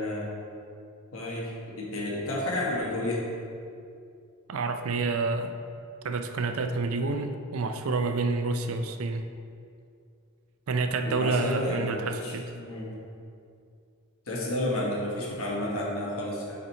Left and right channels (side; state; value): both; normal; correlation 0.23